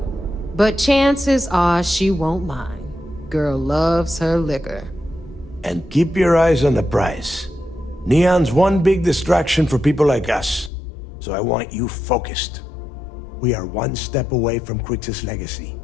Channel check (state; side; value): drops out; right; at 10.7 s